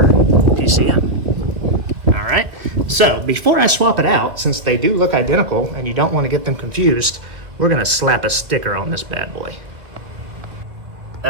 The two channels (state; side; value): late; left; 2.2 ms